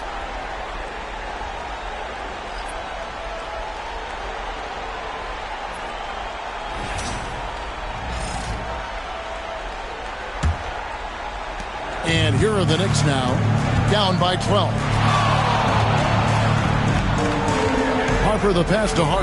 And here are the Knicks now, down by 12. Harper the pass to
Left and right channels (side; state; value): both; identical; correlation 1.00